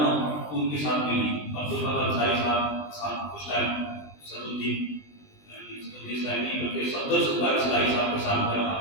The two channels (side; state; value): right; late; 20 ms